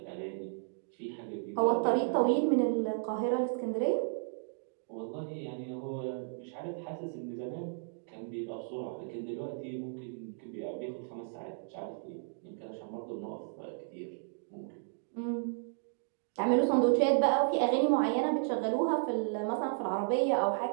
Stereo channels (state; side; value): silent; left; digital silence